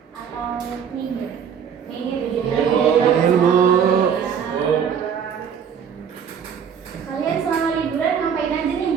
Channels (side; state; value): left; quieter; 7.6 dB